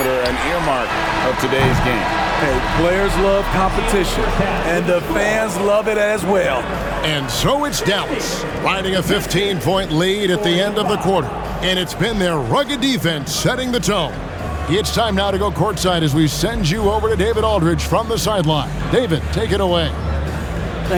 an earmark of today's game. Hey, players love competition, and the fans love it as well. And so it's Dallas, riding a 15-point lead at the end of the quarter. And it's been their rugged defense setting the tone. It's time now to go courtside as we send you over to David Aldridge from the sideline. David, take it away.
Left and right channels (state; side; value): identical; both; correlation 1.00